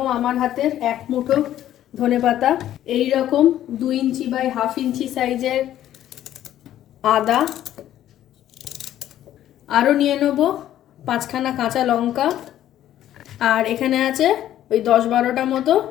আমার হাতের 1 মুঠো ধনেপাতা, এই রকম 2 ইঞ্চি বাই 1/2 ইঞ্চি সাইজের আদা, আরও নিয়ে নেব 5খানা কাঁচা লঙ্কা, আর এখানে আছে ওই 10-12টা মতো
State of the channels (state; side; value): quieter; right; 12.2 dB